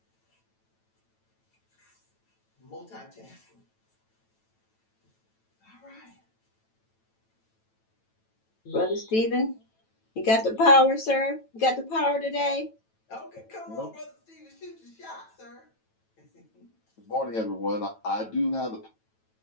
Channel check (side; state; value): right; late; 9.1 ms